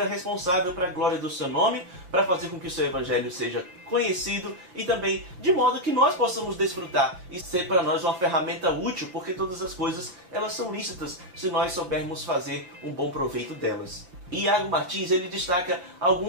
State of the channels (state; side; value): late; left; 6.4 ms